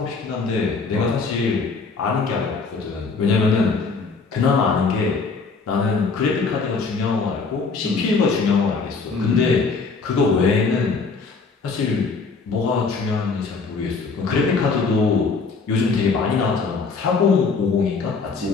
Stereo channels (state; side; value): quieter; right; 4.6 dB